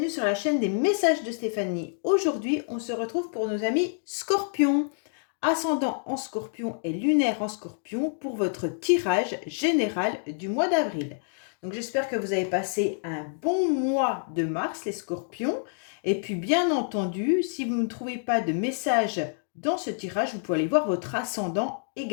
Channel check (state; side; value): silent; right; digital silence